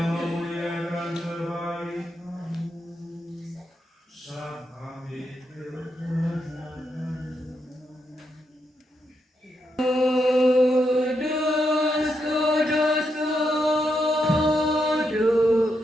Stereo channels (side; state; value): both; normal; correlation 0.82